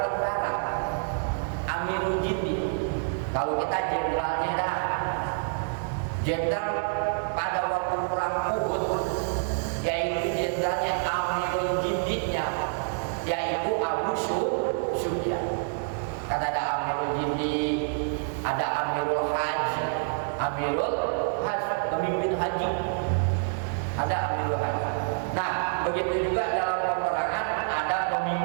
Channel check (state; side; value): silent; left; 60 dB below the other